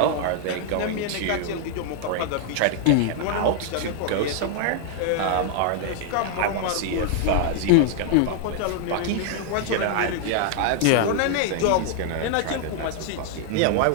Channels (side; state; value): both; different; correlation 0.00